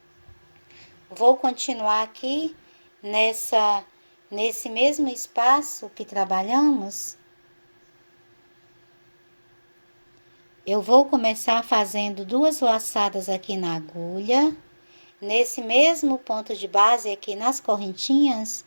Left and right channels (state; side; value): inverted; both; correlation -1.00